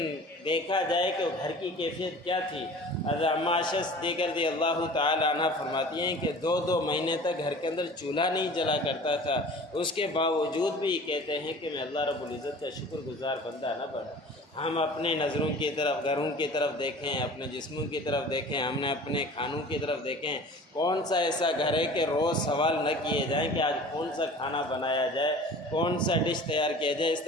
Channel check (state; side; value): normal; both; correlation 0.43